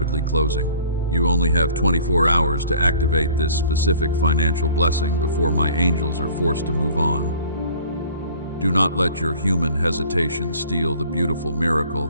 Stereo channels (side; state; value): both; inverted; correlation -0.51